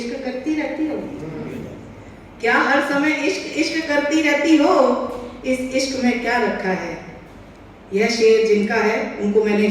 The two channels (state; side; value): identical; both; correlation 1.00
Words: करती रहती हो? क्या हर समय इश्क इश्क करती रहती हो? इस इश्क में क्या रखा है? यह शेर जिनका है उनको मैंने